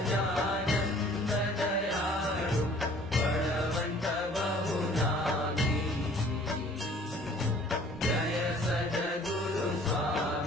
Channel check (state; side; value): normal; both; correlation 0.53